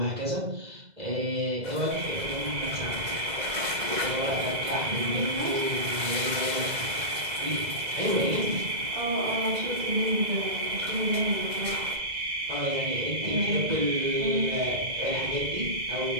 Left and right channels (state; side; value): late; left; 2.0 ms